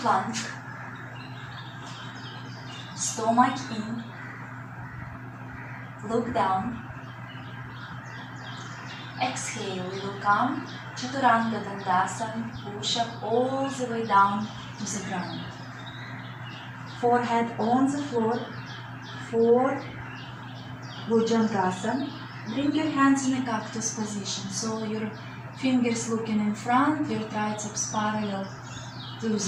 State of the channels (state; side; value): identical; both; correlation 1.00